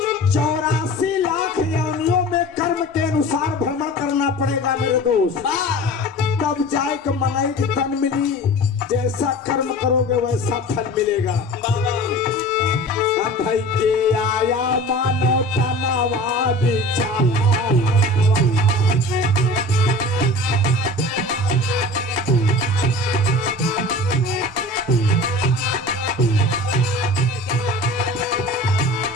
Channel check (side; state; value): both; normal; correlation 0.38